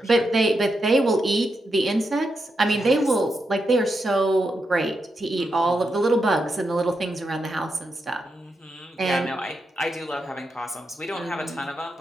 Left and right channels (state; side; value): normal; both; correlation 0.85